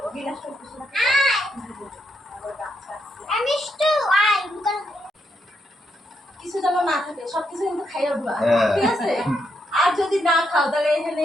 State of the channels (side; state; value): both; normal; correlation 0.79